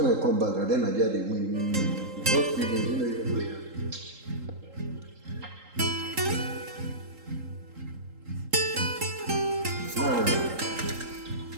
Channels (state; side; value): late; left; 3.8 ms